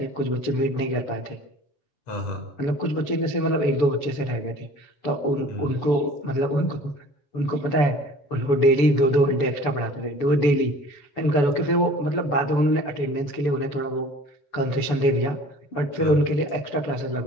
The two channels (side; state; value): right; late; 7.0 ms